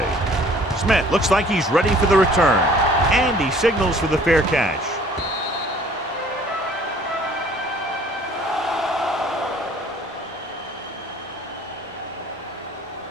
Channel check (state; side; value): normal; both; correlation 0.54